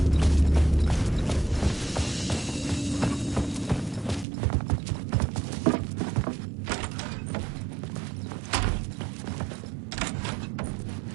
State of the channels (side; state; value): left; drops out; at 4.2 s